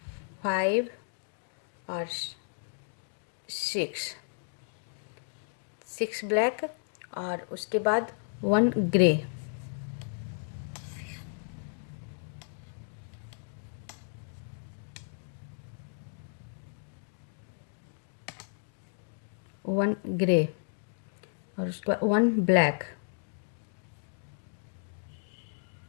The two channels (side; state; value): right; silent; digital silence